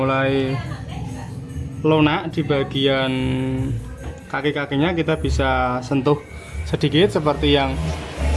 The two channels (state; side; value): identical; both; correlation 1.00